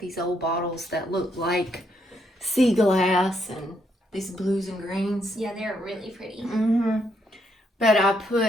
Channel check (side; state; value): both; normal; correlation 0.75